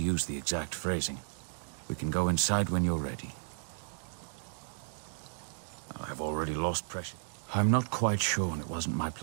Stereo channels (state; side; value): silent; left; digital silence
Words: the exact phrasing. We can go inside when you're ready. I've already lost pressure. I'm not quite sure, and it wasn't my